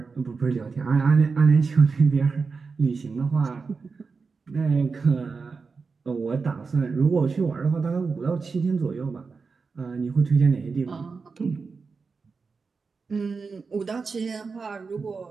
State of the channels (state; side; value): quieter; left; 4.7 dB